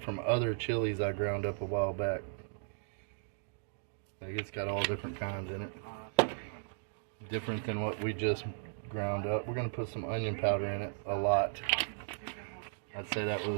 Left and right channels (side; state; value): left; silent; digital silence